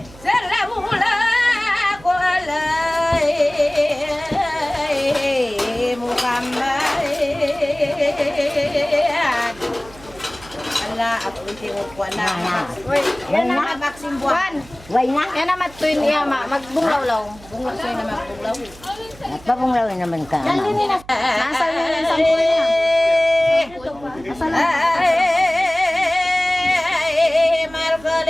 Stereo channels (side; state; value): right; noise; hum, 21 dB below the sound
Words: sallallahu alaihi Muhammad. Allah aku tingog ko na. Yan na. Maxim buwan. Way na. Yan na matuin niya ma. Magbunglaw-law. Bunglaw sa'yo na magbunglaw. Nagpabunglawin naman ka. Nasal niya yung sampul niya. Nasal na.